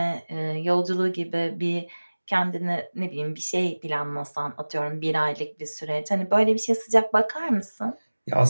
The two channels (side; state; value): both; inverted; correlation -1.00